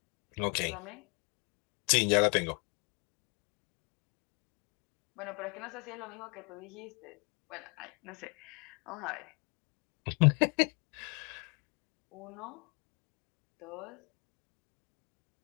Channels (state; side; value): quieter; right; 32.9 dB